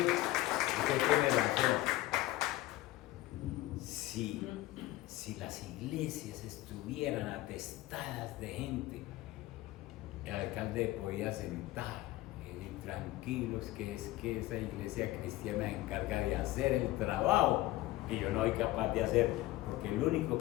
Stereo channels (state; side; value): quieter; right; 16.9 dB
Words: Usted tiene razón. Si las iglesias estuvieran atestadas de gente, el alcalde podía sentar y decir: tranquilos, que es que esa iglesia cristiana se encarga de hacer el trabajo que yo no soy capaz de hacer, porque el único